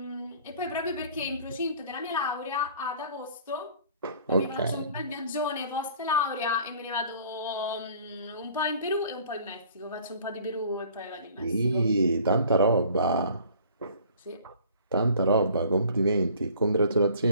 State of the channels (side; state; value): both; inverted; correlation -0.52